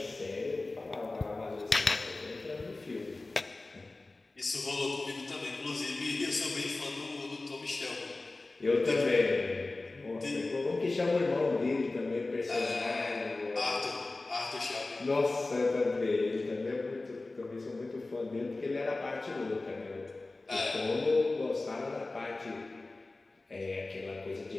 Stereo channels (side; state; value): right; quieter; 3.2 dB